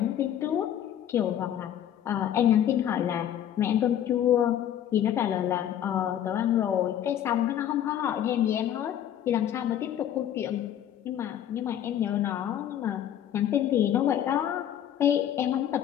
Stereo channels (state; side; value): quieter; right; 10.6 dB